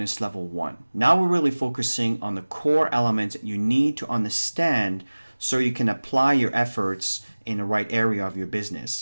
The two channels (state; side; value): inverted; both; correlation -1.00